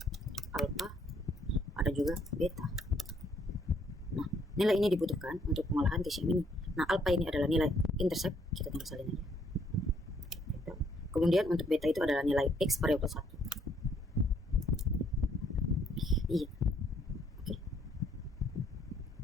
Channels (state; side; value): normal; both; correlation 0.68